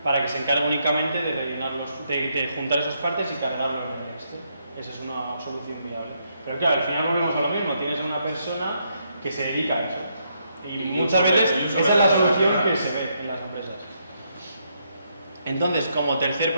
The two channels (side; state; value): both; inverted; correlation -0.77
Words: para que se encargue únicamente de de juntar esas partes y cargarlo en el Excel. Esa es una solución viable. Pero claro, al final volvemos a lo mismo, tienes a una persona que se dedica a eso. Y muchas veces esa es la solución que se ve en las empresas. Entonces, como tercer